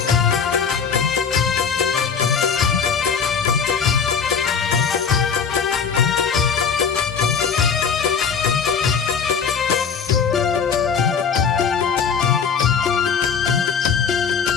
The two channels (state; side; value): quieter; right; 6.4 dB